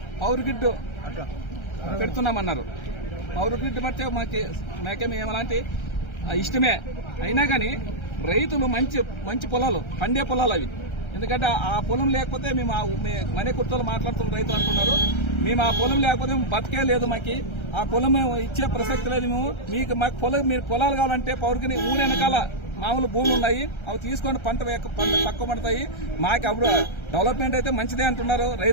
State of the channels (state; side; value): late; right; 1.3 ms